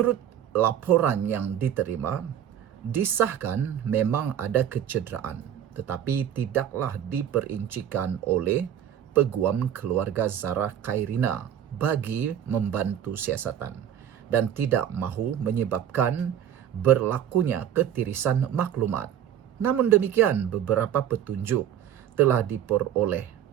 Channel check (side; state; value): left; quieter; 10.0 dB